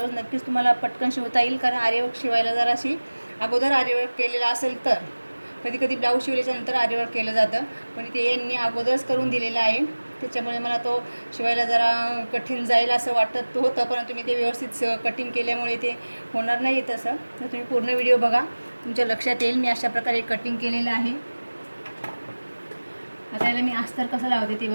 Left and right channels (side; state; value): both; inverted; correlation -1.00